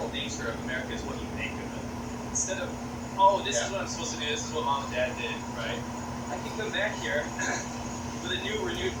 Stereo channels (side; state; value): both; identical; correlation 1.00